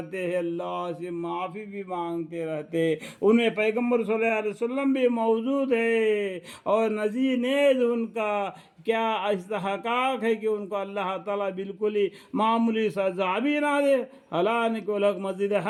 ہیں، اللہ سے معافی بھی مانگتے رہتے، ان میں پیغمبر صلی اللہ علیہ وسلم بھی موجود ہے، اور نذیر نیز ان کا کیا استحقاق ہے کہ ان کو اللہ تعالیٰ بالکل ہی معمولی سزا بھی نہ دے، حالانکہ وہ لوگ مسجد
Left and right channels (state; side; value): identical; both; correlation 1.00